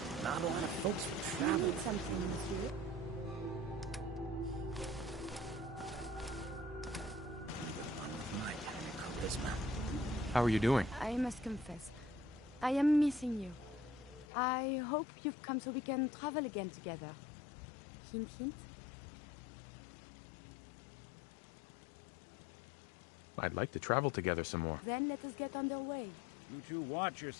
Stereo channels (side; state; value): right; drops out; at 14.2 s